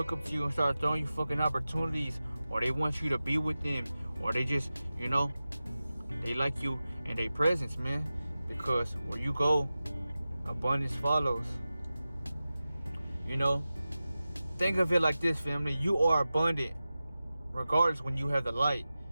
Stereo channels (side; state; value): both; inverted; correlation -0.95